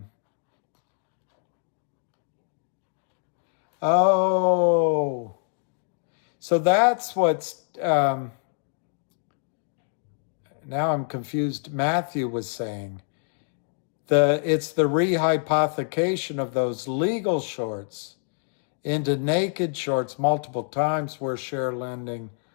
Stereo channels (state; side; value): silent; right; 61 dB below the other